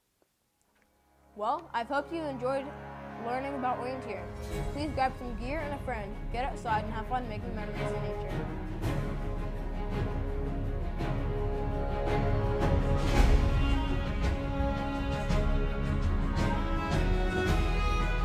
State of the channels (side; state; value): both; identical; correlation 1.00